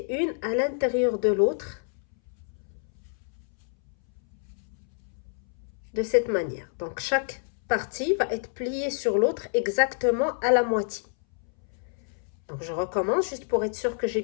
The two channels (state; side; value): silent; right; 59 dB below the other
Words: une à l'intérieur de l'autre de cette manière. Donc chaque partie va être pliée sur l'autre exactement à la moitié. Donc je recommence juste pour être sûr que j'ai